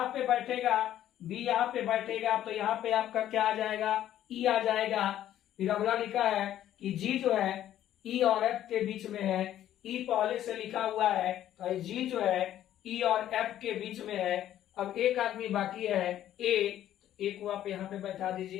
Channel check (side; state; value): right; quieter; 12.0 dB